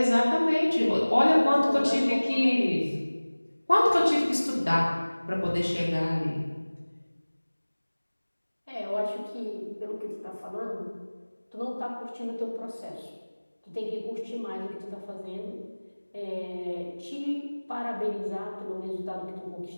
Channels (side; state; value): both; inverted; correlation -1.00